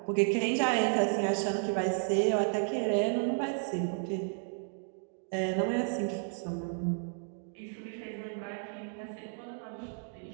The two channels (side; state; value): left; silent; 56 dB below the other